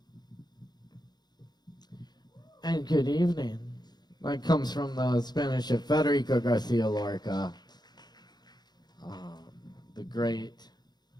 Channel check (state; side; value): late; right; 0.20 ms